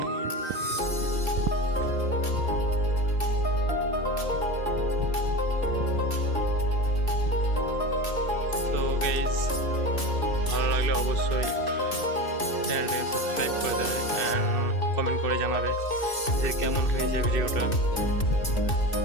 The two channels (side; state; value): right; late; 2.6 ms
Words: তো গাইজ, ভালো লাগলে অবশ্যই চ্যানেলটাকে সাবস্ক্রাইব করে দেবে অ্যান্ড কমেন্ট করে জানাবে যে কেমন হয়েছে ভিডিওটা।